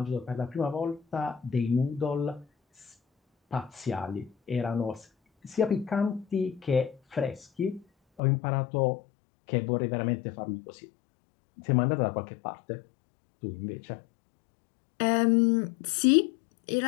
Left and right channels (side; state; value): right; drops out; at 8.2 s